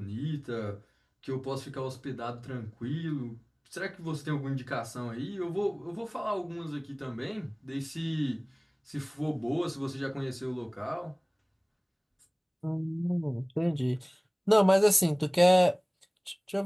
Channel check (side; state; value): both; identical; correlation 1.00